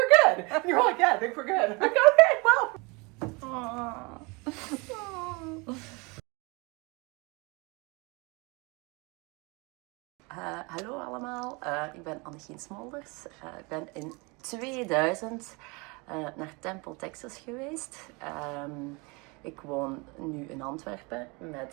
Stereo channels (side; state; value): left; quieter; 28.2 dB